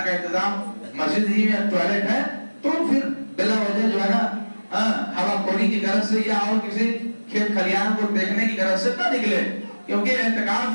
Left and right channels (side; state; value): both; inverted; correlation -1.00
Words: کا انتظام مسجد ہی میں ٹوائلٹ ہے، تو پھر بلا وجہ جو ہے نا ہوا خوری کی غرض سے یا اور کسی کھیت کھلیان کو دیکھنے کی غرض سے نہ نکلے، کیونکہ